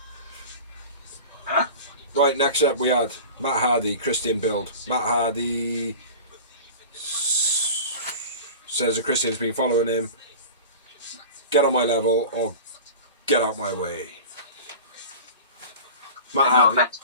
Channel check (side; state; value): both; inverted; correlation -0.36